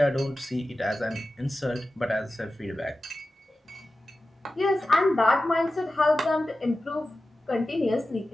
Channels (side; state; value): both; normal; correlation 0.94